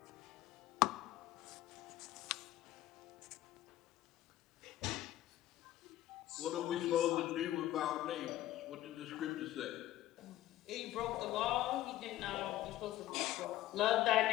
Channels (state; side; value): quieter; right; 14.6 dB